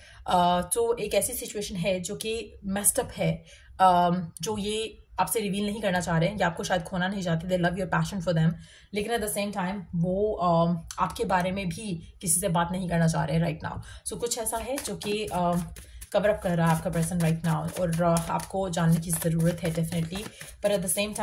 तो एक ऐसी सिचुएशन है जो कि मेस्ड अप है, जो ये आपसे रिवील नहीं करना चाह रहे हैं या आपको शायद खोना नहीं चाहते, दे love your passion for them, लेकिन एट द सेम टाइम वो आपके बारे में भी किसी से बात नहीं करना चाह रहे हैं राइट नाउ। सो कुछ ऐसा है जो कि कवर अप कर रहा है आपका पर्सन राइट नाउ, और आपको जानने की ज़रूरत है डेफिनेटली। पर एट द सेम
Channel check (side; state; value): both; identical; correlation 1.00